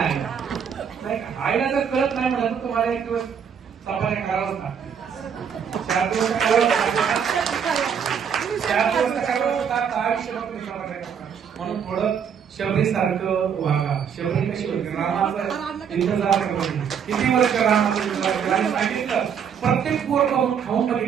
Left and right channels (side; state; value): left; quieter; 7.5 dB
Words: आईला जर कळत नाही म्हणलं तर तुम्हाला एक दिवस सफारी करावंच लागतं. 4 दिवस म्हणून थोडं शबरी सारखं वागा. शबरी कशी होती, रामाचं इंतजार करत किती वर्ष रामाचं इंतजार केलं आणि सांगितलं प्रत्येक बोर खाऊन